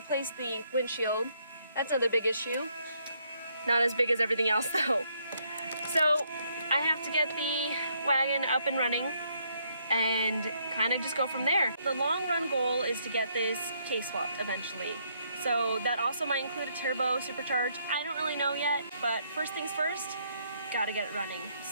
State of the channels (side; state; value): both; inverted; correlation -0.72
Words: the windshield. That's another big issue. Not as big as everything else though. So I have to get the wagon up and running and kind of just go from there. The long run goal is to get this case swapped eventually. So that also might include a turbo supercharge. I don't really know yet, but first things first, gotta get it running.